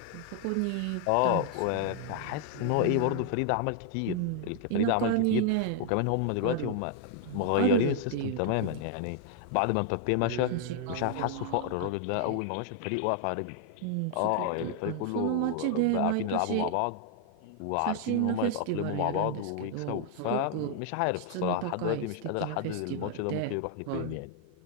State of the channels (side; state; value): both; different; correlation 0.00